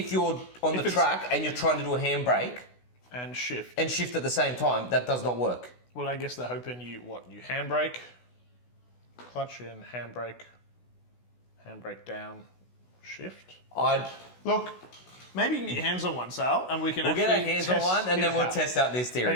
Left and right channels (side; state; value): right; late; 16 ms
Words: you're on the track and you're trying to do a handbrake... And shift. And shift at the same time, that does not work. Well, I guess they're hoping you handbrake... Clutch in, handbrake down, shift. Look, maybe you can get your hands on one, Sal, and we'll get our hands on one, and then we'll test out this theory.